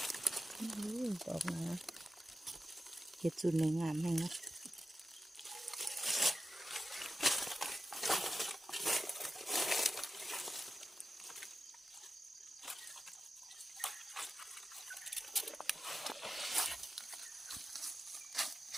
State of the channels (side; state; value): both; normal; correlation 0.92